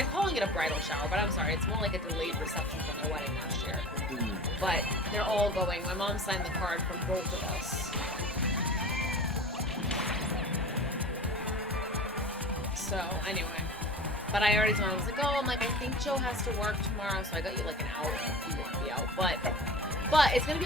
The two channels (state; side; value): normal; both; correlation 0.37